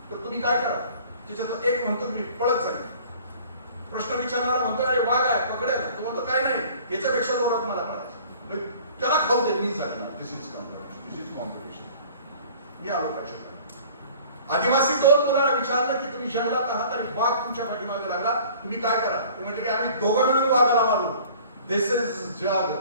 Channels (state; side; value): inverted; both; correlation -0.49